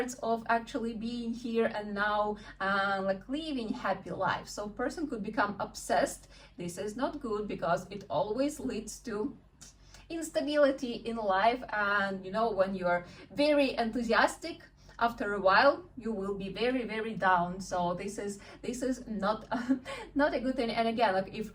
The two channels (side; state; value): both; identical; correlation 1.00